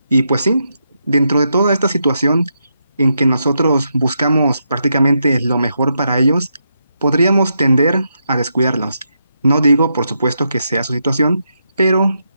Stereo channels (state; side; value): inverted; both; correlation -0.82